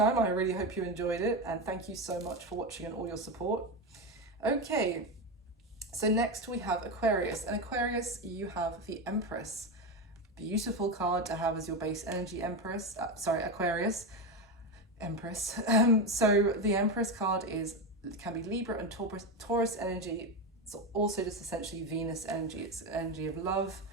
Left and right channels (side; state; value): both; normal; correlation 0.15